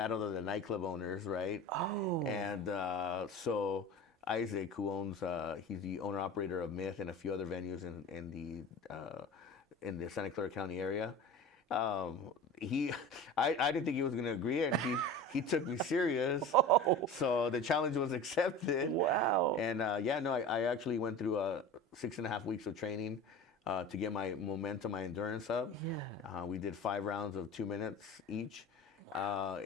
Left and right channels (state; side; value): normal; both; correlation 0.34